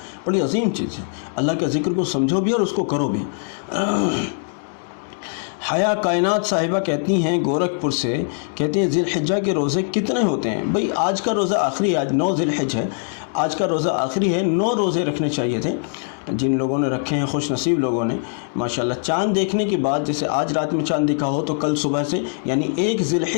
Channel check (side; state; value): right; silent; digital silence